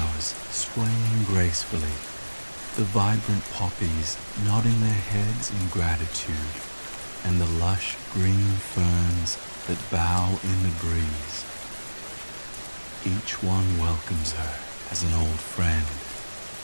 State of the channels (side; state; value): both; inverted; correlation -1.00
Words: swaying gracefully, the vibrant poppies nodding their heads in gratitude, and the lush green ferns that bow in the breeze. Each one welcomes her as an old friend,